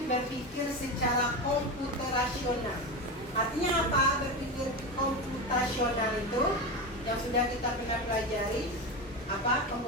berpikir secara komputerasional. Artinya apa berpikir komputasional itu? Yang sudah kita pernah pelajari. Apa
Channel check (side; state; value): both; normal; correlation 0.20